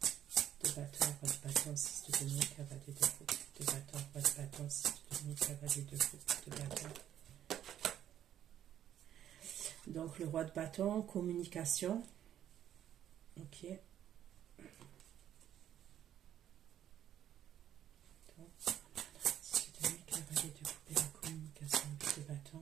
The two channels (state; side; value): quieter; left; 10.8 dB